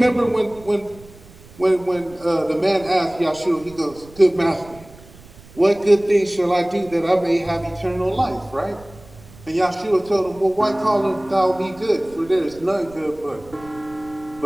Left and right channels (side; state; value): right; noise; rumble, 22 dB below the sound